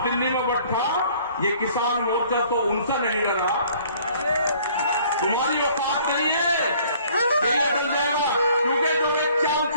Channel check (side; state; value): both; inverted; correlation -0.57